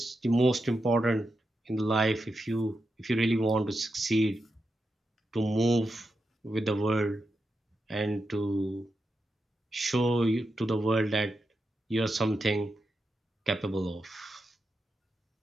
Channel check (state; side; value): normal; both; correlation 0.88